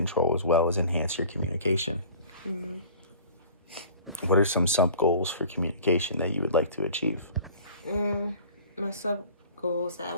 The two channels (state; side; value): inverted; both; correlation -0.46